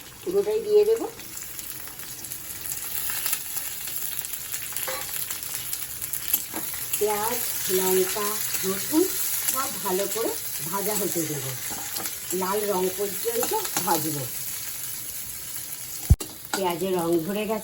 পুরোটাই দিয়ে দেব। পেঁয়াজ, লঙ্কা, রসুন সব ভালো করে ভাজা হতে দেব, লাল রং পর্যন্ত ভাজব। পেঁয়াজের রং ধরে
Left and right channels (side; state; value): both; identical; correlation 1.00